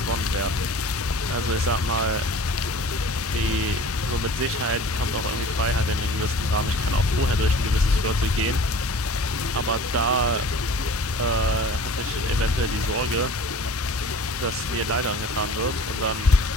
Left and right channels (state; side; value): normal; both; correlation 0.44